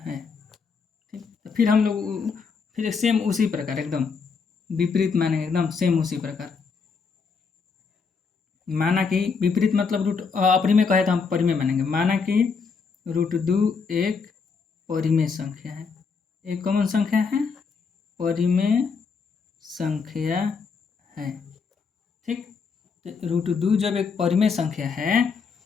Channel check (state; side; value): quieter; right; 5.3 dB